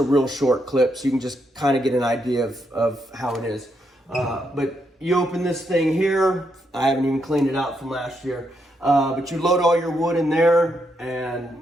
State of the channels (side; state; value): both; normal; correlation 0.79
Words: real short clip, so you can just kind of get an idea of how it is. But you open this thing here. I haven't even cleaned it out from last year. But you load all your wood in there,